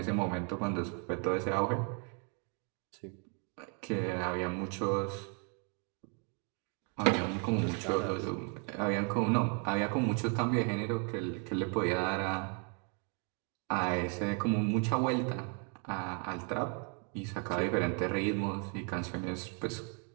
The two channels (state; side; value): quieter; left; 38.5 dB